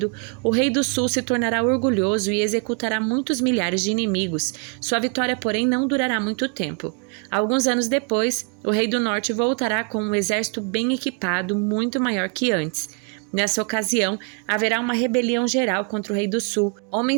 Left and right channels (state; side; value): quieter; left; 35.3 dB